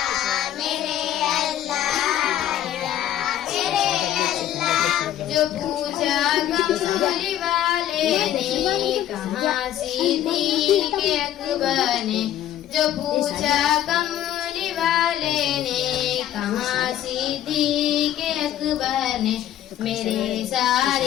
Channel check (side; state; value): right; quieter; 11.8 dB